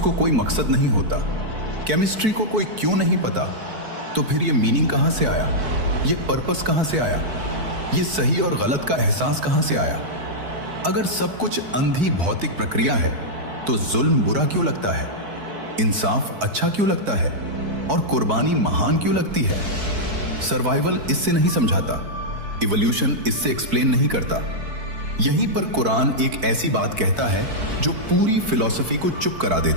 कोई मकसद नहीं होता, केमिस्ट्री को कोई क्यों नहीं पता, तो फिर ये मीनिंग कहां से आया? ये पर्पस कहां से आया? ये सही और गलत का एहसास कहां से आया? अगर सब कुछ अंधी भौतिक प्रक्रिया है तो जुल्म बुरा क्यों लगता है, इंसाफ अच्छा क्यों लगता है और कुर्बानी महान क्यों लगती है? सर्वाइवल इससे नहीं समझाता, इवोल्यूशन इससे एक्सप्लेन नहीं करता। यहीं पर कुरान एक ऐसी बात कहता है जो पूरी फिलॉसफी को चुप करा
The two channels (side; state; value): left; late; 4.6 ms